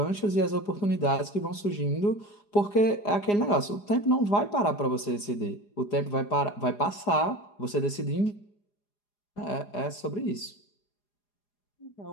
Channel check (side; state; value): right; late; 4.9 ms